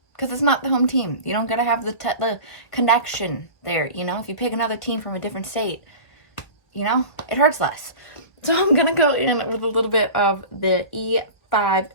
Because it's not the home team. You don't gotta have the connection there, you know? If you pick another team from a different state, you know, it hurts less. So I'm gonna go in with a little bit of the E5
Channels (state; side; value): late; right; 1.7 ms